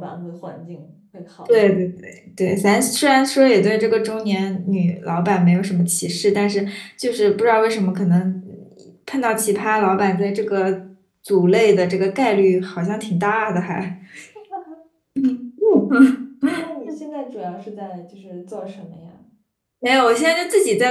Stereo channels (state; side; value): identical; both; correlation 1.00